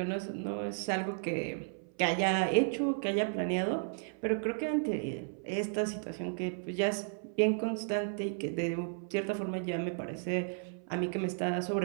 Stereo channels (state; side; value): silent; left; 55 dB below the other